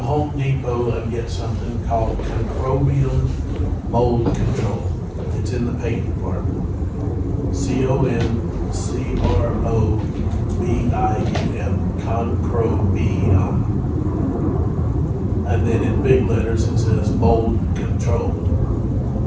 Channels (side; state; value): both; identical; correlation 1.00